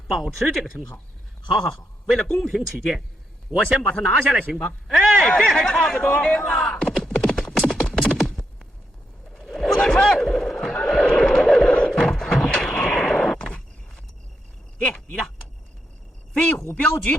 保持这个称号。好，为了公平起见，我先把他拿下来，行吧？哎，这还差不多。不能拆！爹，你的飞虎镖局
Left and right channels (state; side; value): normal; both; correlation 0.81